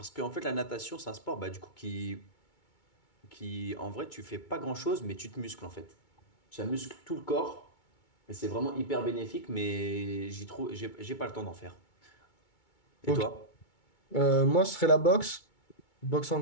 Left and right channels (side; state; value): right; late; 2.2 ms